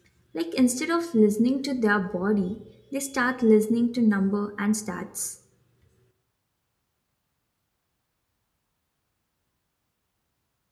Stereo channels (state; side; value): identical; both; correlation 1.00